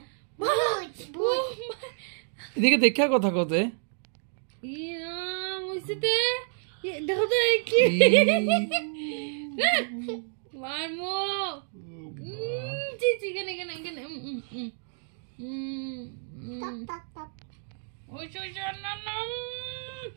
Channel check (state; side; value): silent; left; digital silence